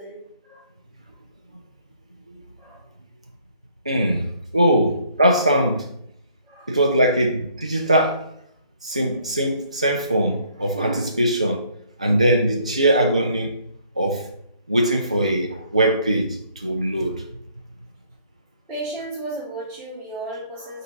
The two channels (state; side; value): inverted; both; correlation -0.63